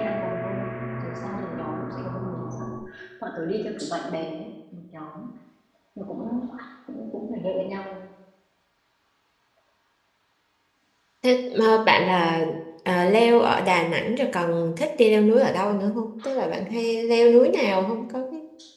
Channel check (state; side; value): identical; both; correlation 1.00